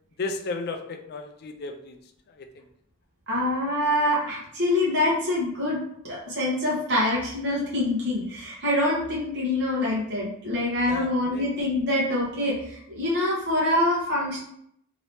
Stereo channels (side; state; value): both; normal; correlation 0.10